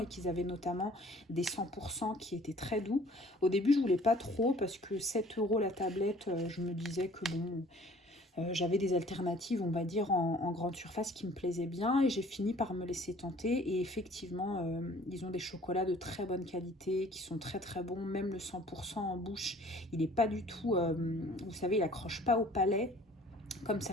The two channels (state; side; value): normal; both; correlation 0.53